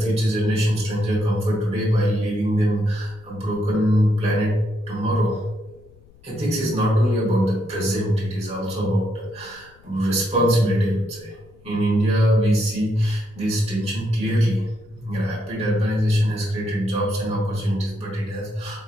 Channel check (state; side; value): noise; left; rumble, 26 dB below the sound